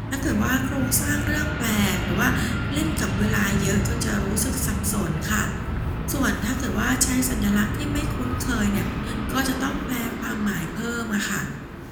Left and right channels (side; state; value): both; identical; correlation 1.00